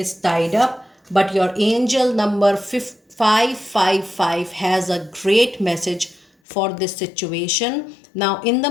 tied up, but your angel number 555 has a great message for this situation. Now in the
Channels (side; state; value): right; drops out; at 6.2 s